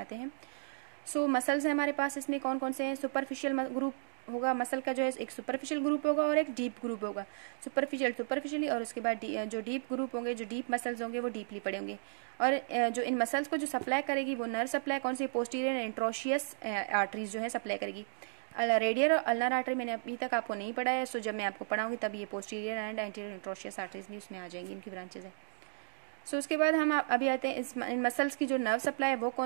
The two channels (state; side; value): silent; left; digital silence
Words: हैं। सो मसल्स हैं हमारे पास, इसमें कौन कौन से हैं। सुपरफिशियल ग्रुप होगा मसल का, जो है एक सुपरफिशियल ग्रुप होगा और एक डीप ग्रुप होगा। सुपरफिशियली और उसके बाद जो डीप ग्रुप होंगे, जो डीप मसल्स होंगे वो डीपली पड़े होंगे। और जो इन मसल्स को जो सप्लाई करेगी वो नर्व सप्लाई कौन सी, पोस्टीरियर इंट्रोशियस आर्टरीज जो है सप्लाई करेगी। रेडियल और अल्नर आर्टरी मैंने अभी तक आपको नहीं पढ़ा है, सो जब मैं आपको पढ़ाऊंगी तब ये posterior and anterior interosseous arteries भी उसमें आ जाएंगी, इनकी ब्रांचेज हैं। सो उसके बाद हम अभी आते हैं इन मसल्स की जो नर्व सप्लाई है वो